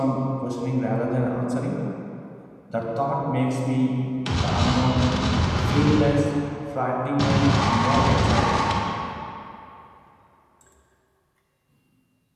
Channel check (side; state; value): both; identical; correlation 1.00